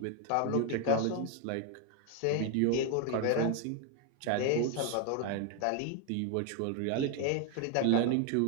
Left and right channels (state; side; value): different; both; correlation 0.01